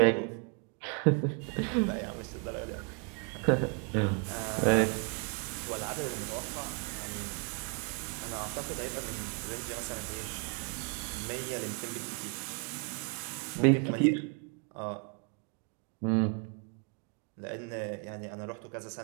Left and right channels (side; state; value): left; quieter; 35.1 dB